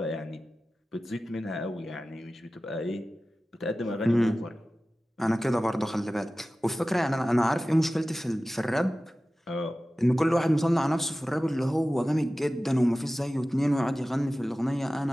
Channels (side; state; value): both; normal; correlation 0.96